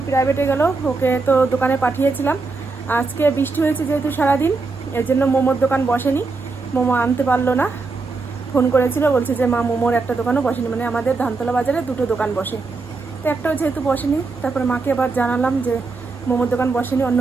প্রাইভেটে গেল, ওকে তো দোকানে পাঠিয়েছিলাম। আজকে বৃষ্টি হয়েছে যেহেতু সারাদিন, এর জন্য মোমোর দোকান বসেনি, মোমো আনতে পারলো না। ফোন করেছিল, বলছে যে মা মোমোর একটা দোকানও বসেনি, মানে আমাদের ধানতলা বাজারে দুটো দোকান বসে, তো একটাও যেহেতু বসেনি। তারপরে মাকে আবার জানালাম যে মোমোর দোকান বসেনি, অন্য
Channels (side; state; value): left; quieter; 4.0 dB